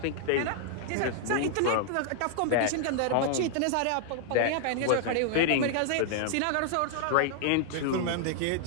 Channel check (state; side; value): different; both; correlation -0.01